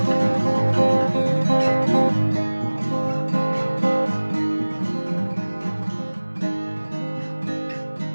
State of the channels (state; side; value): inverted; both; correlation -1.00